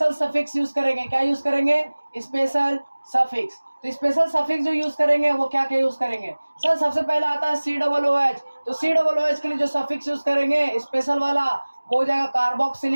सफिक्स यूज करेंगे। क्या यूज करेंगे? Special suffix. तो स्पेशल सफिक्स जो यूज करेंगे वो क्या क्या यूज करेंगे? सर सबसे पहला आता है COOH। तो COOH के लिए जो सफिक्स यूज करेंगे स्पेशल वाला वो हो जाएगा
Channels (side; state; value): both; inverted; correlation -1.00